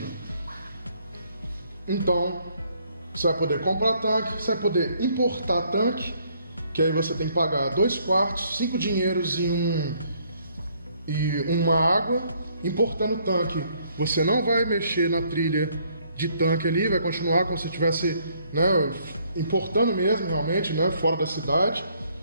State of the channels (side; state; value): both; inverted; correlation -0.66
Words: Então, você vai poder comprar tanque, você vai poder importar tanque, que aí você tem que pagar 2 quartos, 5 dinheiros e uma água. Importando tanque, você não vai mexer na trilha de tanque ali, vai continuar como se estivesse, né, importando mesmo, realmente, né, fora da cidade.